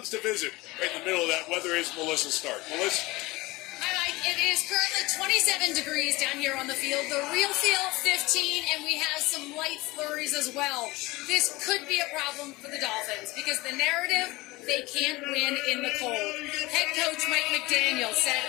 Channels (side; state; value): right; quieter; 21.5 dB